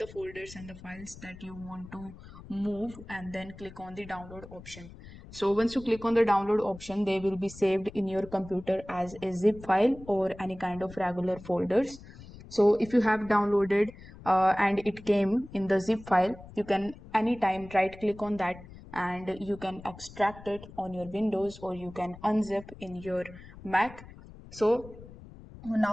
folders and the files that you want to move and then click on the download option. So once you click on the download option, they will be saved in your computer as a zip file or any kind of regular folders. So if you have downloaded and it came in the zip file, you can anytime right click on that and you can extract it on your Windows or you can unzip in your Mac. So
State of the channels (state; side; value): noise; left; rumble, 17 dB below the sound